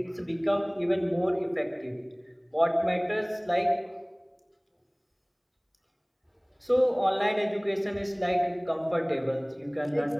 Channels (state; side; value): identical; both; correlation 1.00